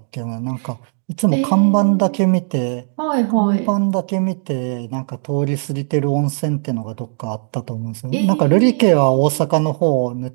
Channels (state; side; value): silent; left; 67 dB below the other